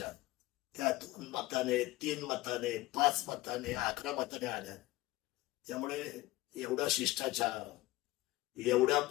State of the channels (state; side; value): quieter; right; 18.5 dB